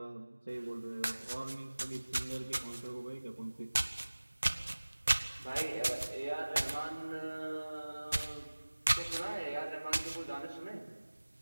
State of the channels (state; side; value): inverted; both; correlation -1.00